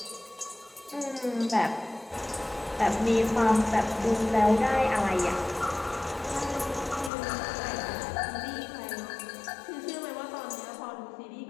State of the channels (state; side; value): drops out; right; at 7.1 s